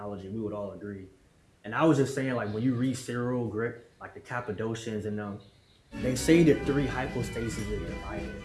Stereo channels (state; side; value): identical; both; correlation 1.00